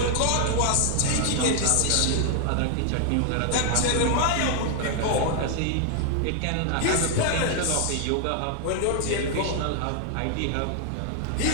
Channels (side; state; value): both; different; correlation 0.00